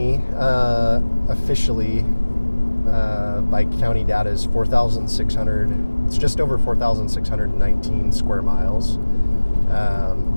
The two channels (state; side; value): inverted; both; correlation -1.00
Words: officially by county data is 4,600. It's just over 4,619 square miles.